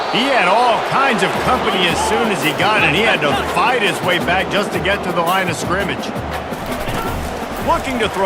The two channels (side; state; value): both; identical; correlation 1.00